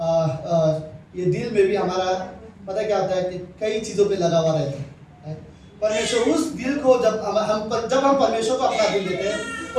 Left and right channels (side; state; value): both; identical; correlation 1.00